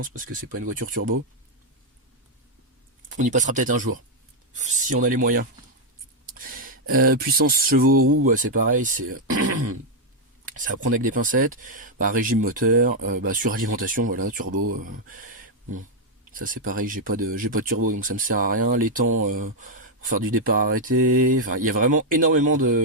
parce que c'est pas une voiture turbo. On y passera peut-être un jour, si on a les moyens. Puissance chevaux roues, c'est pareil, c'est à prendre avec des pincettes. Régime moteur, suralimentation, voilà, turbo. Bon, ça c'est pareil, j'ai pas de turbo, donc ça me sert à rien. Les temps pour faire du départ arrêté, enfin il y a vraiment énormément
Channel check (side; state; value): both; normal; correlation -0.01